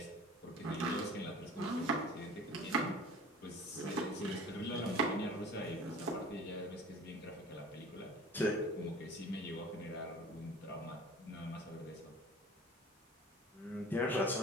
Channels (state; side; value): normal; both; correlation 0.43